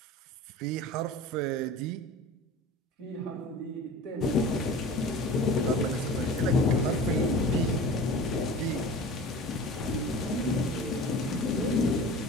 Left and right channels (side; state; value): both; normal; correlation 0.38